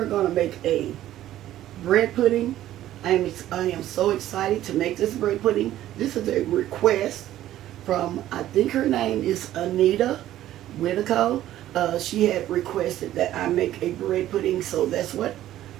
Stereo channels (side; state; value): left; quieter; 13.3 dB